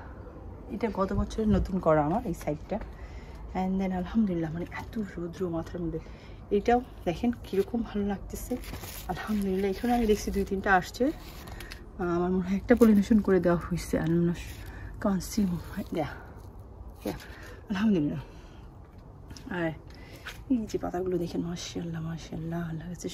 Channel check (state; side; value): identical; both; correlation 1.00